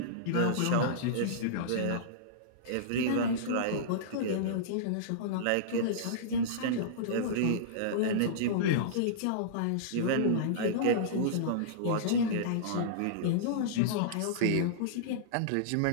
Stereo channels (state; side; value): different; both; correlation -0.03